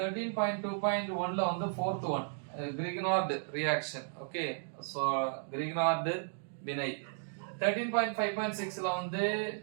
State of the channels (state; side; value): silent; left; digital silence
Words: வந்து fourth one Grignard reaction. Okay, so Grignard வினை. 13.5.6ல வந்து